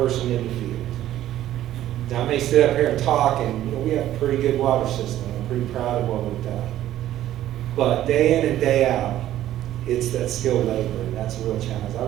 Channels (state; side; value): quieter; left; 13.0 dB